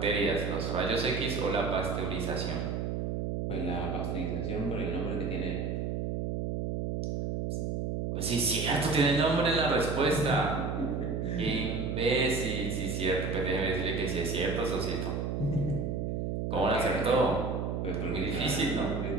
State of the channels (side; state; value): right; noise; hum, 1 dB below the sound